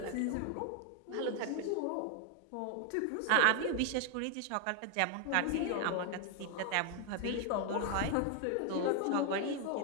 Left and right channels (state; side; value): different; both; correlation 0.00